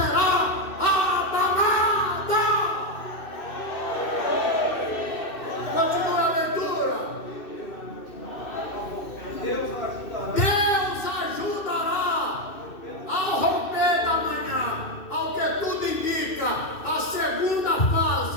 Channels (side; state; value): right; late; 2.6 ms